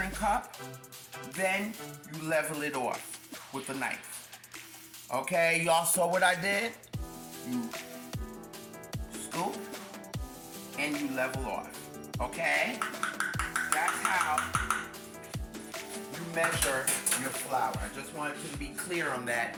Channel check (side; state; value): both; identical; correlation 1.00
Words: cup, then you level it off with a knife. Okay, y'all saw what I did? You scoop and you level off. Okay? That's how you measure your flour. I just wanted to be clear on that.